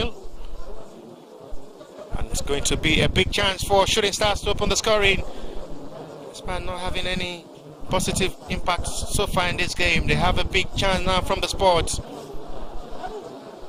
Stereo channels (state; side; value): identical; both; correlation 1.00